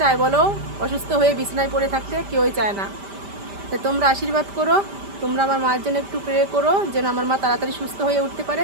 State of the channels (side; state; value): left; late; 5.1 ms